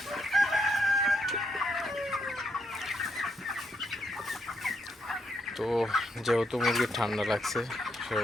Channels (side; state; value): both; normal; correlation 0.78